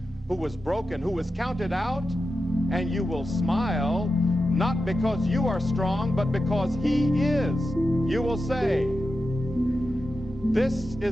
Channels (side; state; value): both; normal; correlation 0.90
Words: who was broken, who was counted out? And you will smile, not because you are strong, but because he is. You will say, this